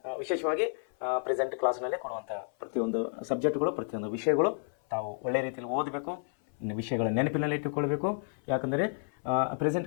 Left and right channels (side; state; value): right; silent; 56 dB below the other